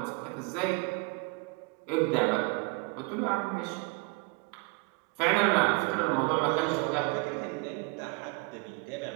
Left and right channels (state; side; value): quieter; left; 28.7 dB